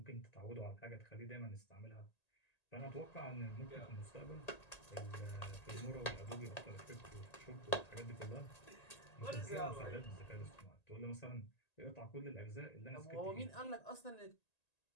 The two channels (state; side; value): late; right; 1.9 ms